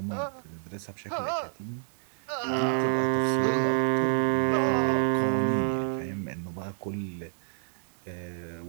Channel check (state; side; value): silent; left; digital silence